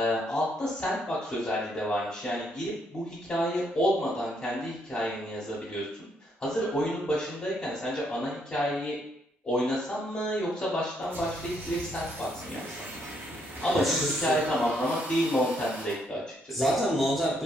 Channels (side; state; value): both; normal; correlation 0.73